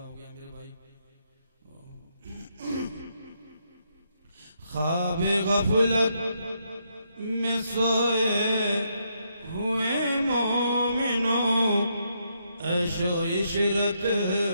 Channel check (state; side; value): inverted; both; correlation -0.77